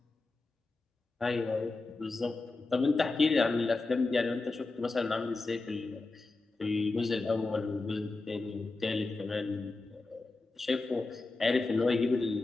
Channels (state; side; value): quieter; right; 3.5 dB